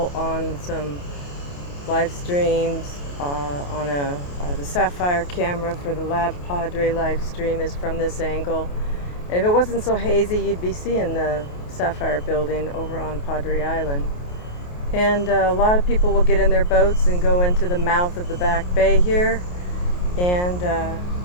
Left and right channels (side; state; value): right; late; 28 ms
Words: on some live streams. On the Sapphire camera for the Lab Padre live stream is from this angle. And if it wasn't so hazy, you'd be seeing the Sapphire building over on Padre Island. And a lot of people will get in their boats and go into the mouth of the back bay here and